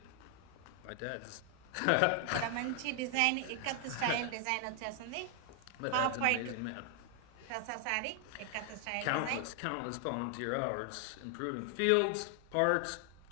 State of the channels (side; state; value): both; different; correlation 0.00